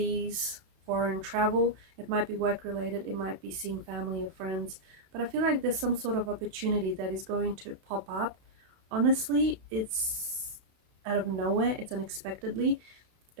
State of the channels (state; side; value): late; left; 32 ms